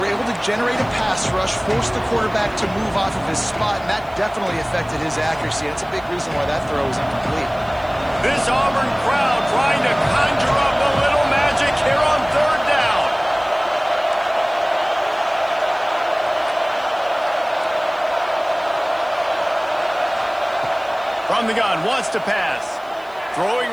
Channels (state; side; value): noise; right; hiss, 29 dB below the sound